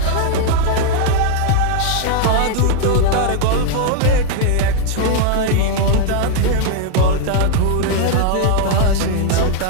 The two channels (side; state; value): both; different; correlation 0.00